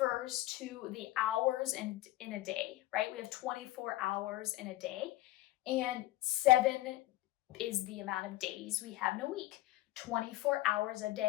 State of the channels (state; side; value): quieter; right; 16.9 dB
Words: to the hours in a day, right? We have 24 hours in a day, and 7 is the amount of days we have in a week. 24 hours a